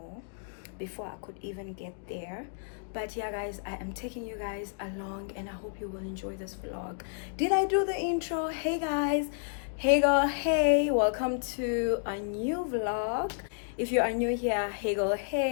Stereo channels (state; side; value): silent; right; digital silence